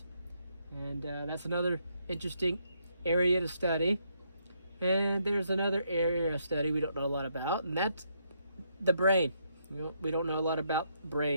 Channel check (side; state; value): both; inverted; correlation -0.75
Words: And that's another interesting area to study. And there's another area of study we don't know a lot about, and that's the brain. We don't know a lot about